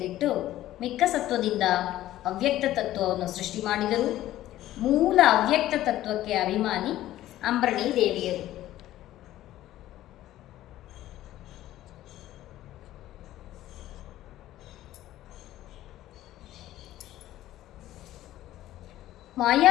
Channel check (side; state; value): right; quieter; 14.2 dB